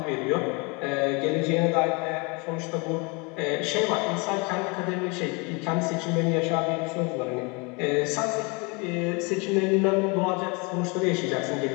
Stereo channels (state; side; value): quieter; right; 29.9 dB